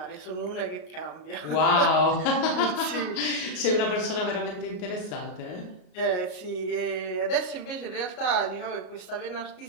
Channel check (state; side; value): late; right; 33 ms